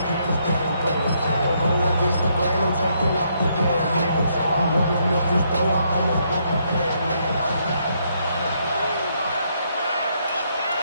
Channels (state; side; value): inverted; both; correlation -0.74